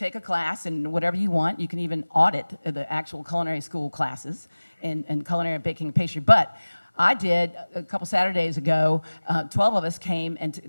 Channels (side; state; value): both; inverted; correlation -1.00